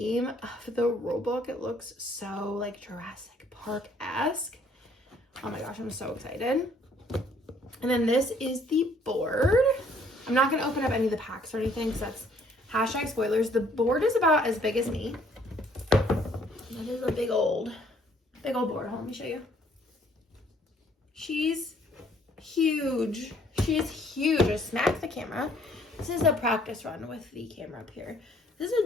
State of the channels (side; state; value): both; normal; correlation 0.62